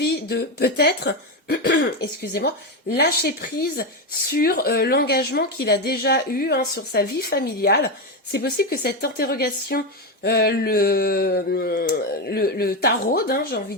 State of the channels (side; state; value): both; normal; correlation 0.11